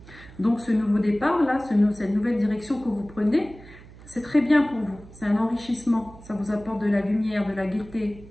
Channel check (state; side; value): noise; right; hum, 20 dB below the sound